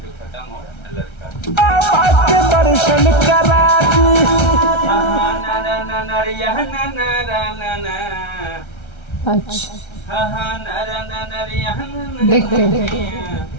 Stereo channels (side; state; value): right; late; 1.3 ms